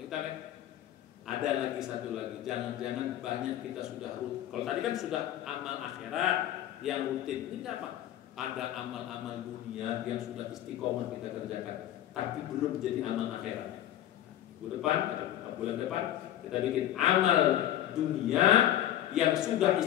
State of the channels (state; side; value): quieter; right; 12.3 dB